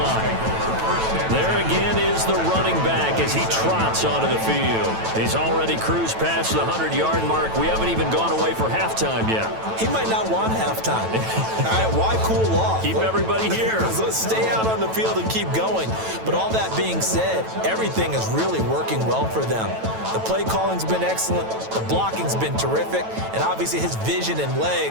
There again is the running back as he trots onto the field. He's already cruised past the 100-yard mark. We haven't even gone away for halftime yet. He might not want halftime. All right, why cool off? Keep everybody here. Let's stay out on the field and keep going. But all that being said, everything is really working well for them. The play calling's been excellent. The blocking's been terrific. And obviously his vision and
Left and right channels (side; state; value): left; late; 9.1 ms